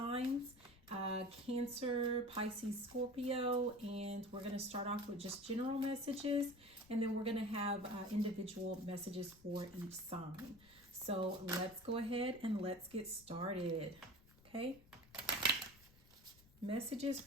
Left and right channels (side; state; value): left; noise; rumble, 25 dB below the sound